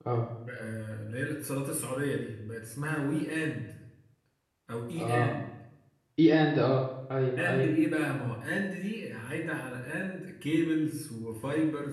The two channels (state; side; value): identical; both; correlation 1.00